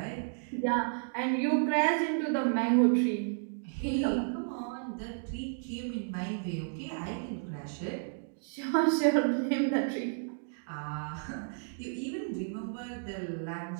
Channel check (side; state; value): left; silent; digital silence